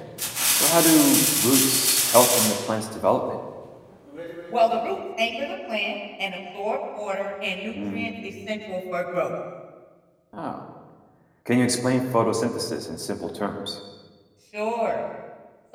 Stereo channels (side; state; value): both; identical; correlation 1.00